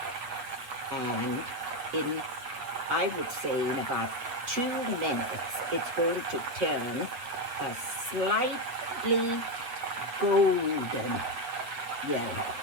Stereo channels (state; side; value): late; left; 7.7 ms